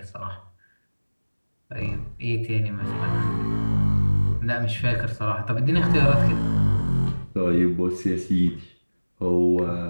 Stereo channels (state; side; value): inverted; both; correlation -1.00